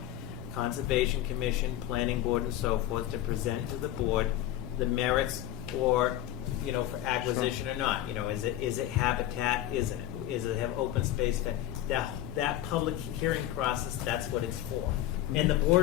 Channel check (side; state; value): right; quieter; 13.2 dB